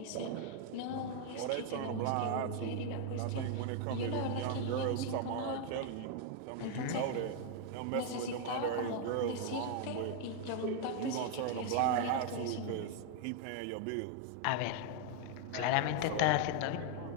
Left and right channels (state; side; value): different; both; correlation 0.00